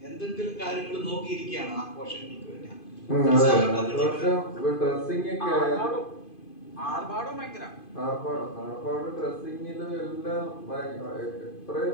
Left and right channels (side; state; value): right; late; 2.5 ms